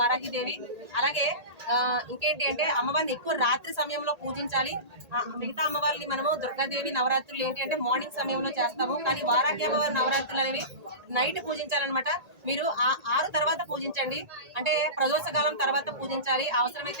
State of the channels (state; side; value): late; left; 1.8 ms